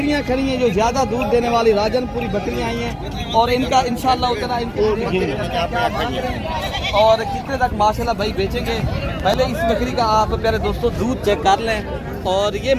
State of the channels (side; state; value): both; identical; correlation 1.00